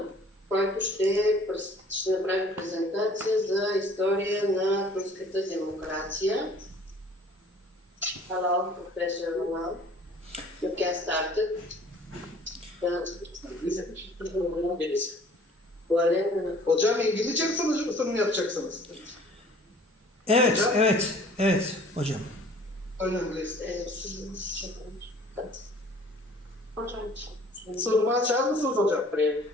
който ще направи презентация за история на турската демокрация. Hello, Professor Янал. You can start it. Hocam İngilizce mi sunum yapacaksınız? Evet, Hocam? evet hocam. Önemli. Sunumu açar mısınız hocam?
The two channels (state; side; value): normal; both; correlation 0.52